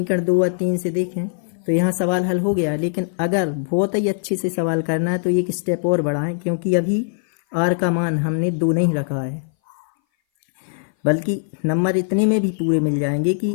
2 और 3 से देखें तो यहाँ सवाल हल हो गया, लेकिन अगर बहुत ही अच्छे से सवाल करना है तो एक स्टेप और बढ़ाएं क्योंकि अभी r का मान हमने 2 नहीं रखा है, बल्कि नंबर इतने में भी पूरे मिल जाएंगे कि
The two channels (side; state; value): right; silent; 59 dB below the other